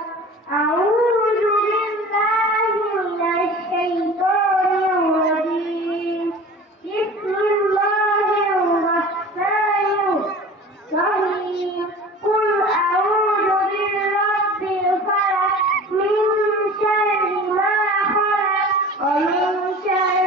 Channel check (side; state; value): both; normal; correlation 0.40